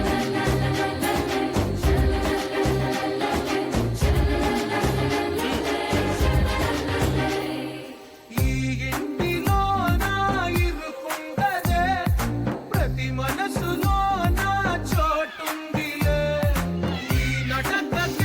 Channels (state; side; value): identical; both; correlation 1.00